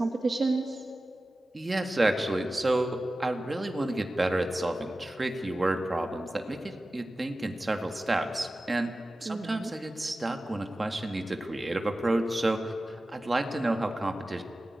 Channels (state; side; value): normal; both; correlation 0.95